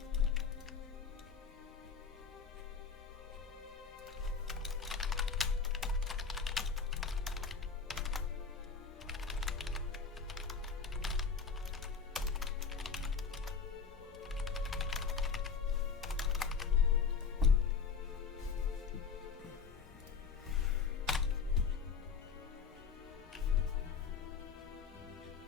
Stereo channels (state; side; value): quieter; right; 5.7 dB